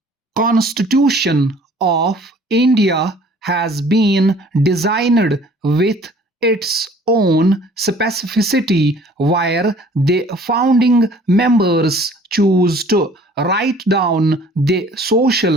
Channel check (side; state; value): both; normal; correlation 0.53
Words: Constitution of India has been designed with its own specificity where the founding members choose to write down the